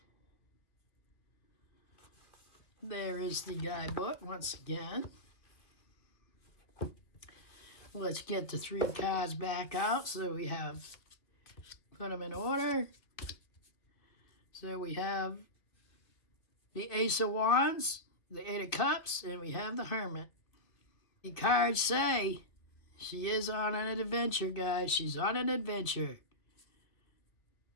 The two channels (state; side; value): late; right; 2.3 ms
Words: There is the guidebook once again. Let's get the 3 cards back out. So we have, put them in order. So we have the Ace of Wands, the 8 of Cups, and we have the Hermit. The cards say she is on an adventure, guys. She's on an adventure.